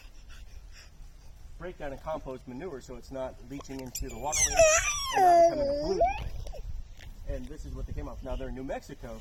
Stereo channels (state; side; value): identical; both; correlation 1.00